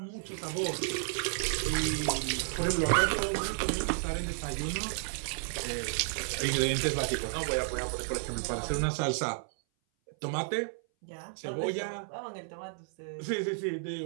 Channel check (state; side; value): silent; left; 56 dB below the other